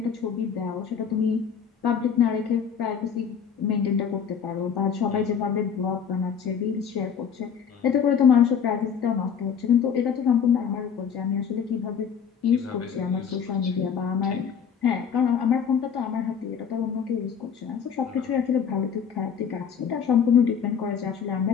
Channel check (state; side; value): quieter; right; 7.3 dB